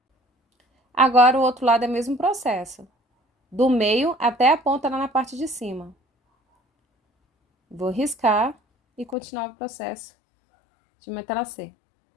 Agora o outro lado é o mesmo processo. Do meio até a ponta lá na parte de cima. Vou riscar e continuar o processo de matelassê.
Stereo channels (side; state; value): right; drops out; at 9.2 s